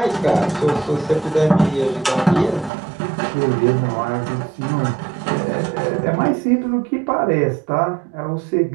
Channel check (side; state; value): left; drops out; at 2.7 s